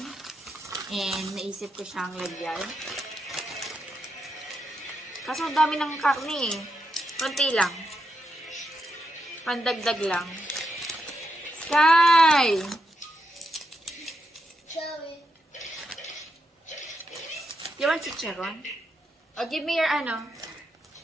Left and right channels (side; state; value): both; normal; correlation 0.84